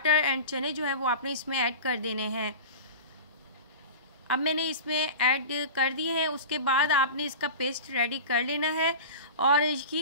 एंड चने जो है वो आपने इसमें ऐड कर देने हैं। अब मैंने इसमें ऐड कर दिए हैं। उसके बाद आपने इसका पेस्ट रेडी कर लेना है और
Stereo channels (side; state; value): both; inverted; correlation -0.32